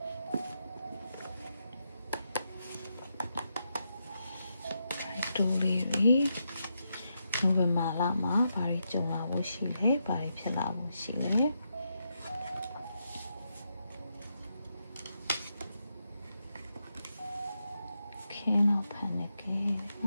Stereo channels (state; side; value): inverted; both; correlation -0.84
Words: ဖိုက်တူးလေးနိုဝင်ဘာလမှာဘာတွေကြုံလာဖို့ရှိလဲဘာတွေဖြစ်လာဖို့ရှိလဲKing of Panic